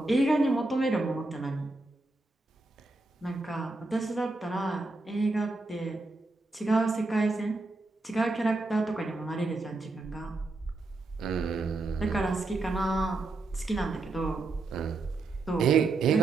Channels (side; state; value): left; quieter; 3.2 dB